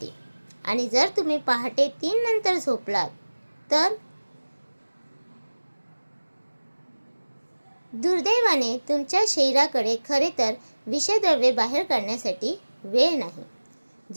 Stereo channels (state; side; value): inverted; both; correlation -1.00